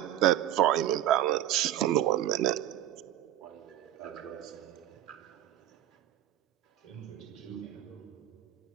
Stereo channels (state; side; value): quieter; left; 12.5 dB